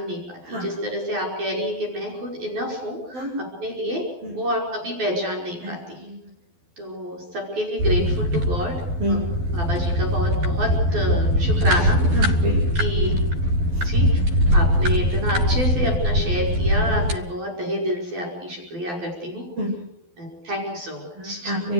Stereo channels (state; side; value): late; left; 12 ms